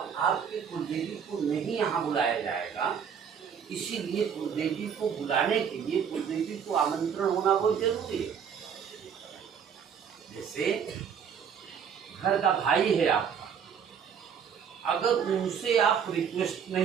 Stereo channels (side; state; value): left; quieter; 7.5 dB